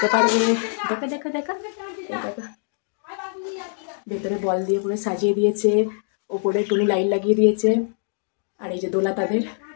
পারবে। দেখো দেখো দেখো, এই দেখো, ভেতরে বল দিয়ে পুরো সাজিয়ে দিয়েছে, ওপরে টুনি লাইট লাগিয়ে দিয়েছে, আর এই যে দোলা তাদের।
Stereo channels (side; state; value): right; silent; digital silence